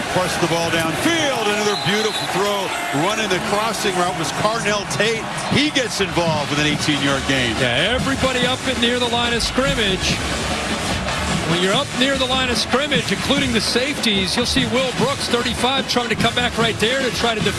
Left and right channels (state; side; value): identical; both; correlation 1.00